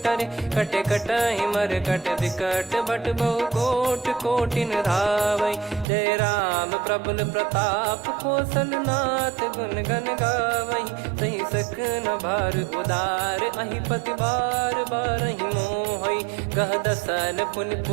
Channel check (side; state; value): left; drops out; at 5.9 s